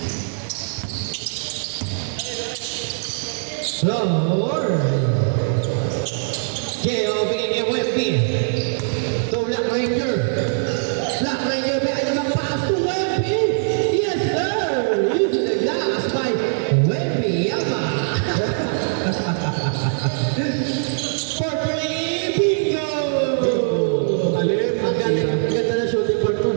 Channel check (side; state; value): left; silent; digital silence